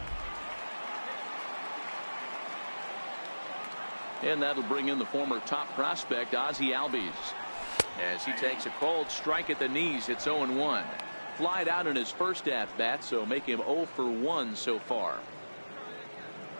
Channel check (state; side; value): inverted; both; correlation -1.00